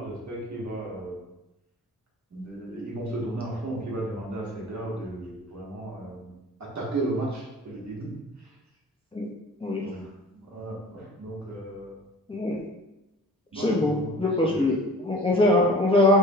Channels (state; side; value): normal; both; correlation 0.43